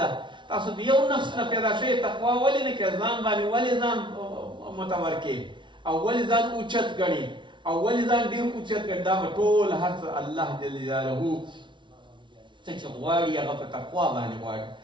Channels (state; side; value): late; left; 0.24 ms